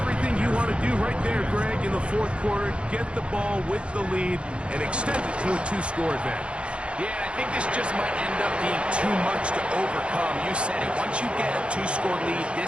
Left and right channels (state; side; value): late; left; 0.058 ms